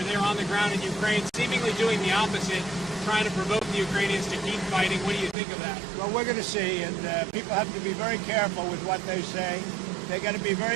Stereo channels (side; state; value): left; drops out; at 5.4 s